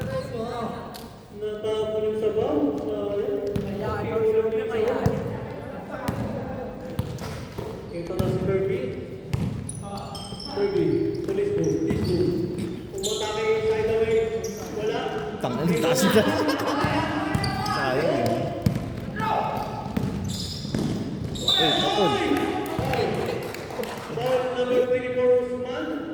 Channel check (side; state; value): both; identical; correlation 1.00